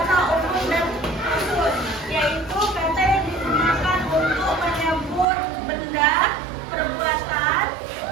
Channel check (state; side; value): drops out; left; at 5.2 s